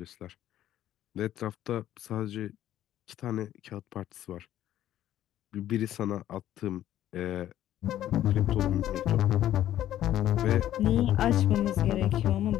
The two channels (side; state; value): right; quieter; 12.4 dB